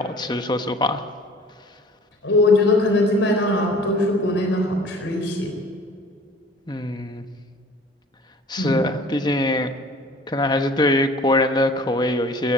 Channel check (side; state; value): both; normal; correlation 0.48